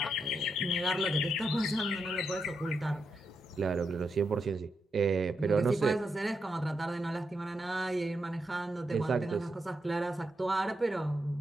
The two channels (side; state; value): both; normal; correlation 0.83